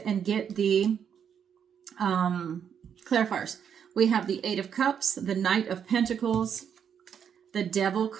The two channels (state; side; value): quieter; left; 8.0 dB